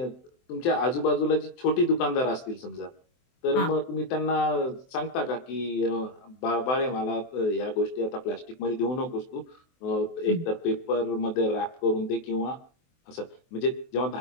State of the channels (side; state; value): right; late; 23 ms